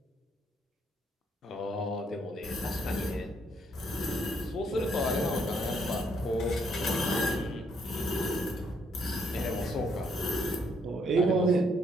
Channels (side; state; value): both; normal; correlation 0.71